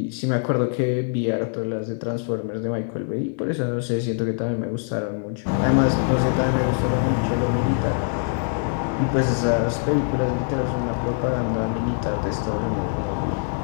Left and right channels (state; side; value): silent; right; 61 dB below the other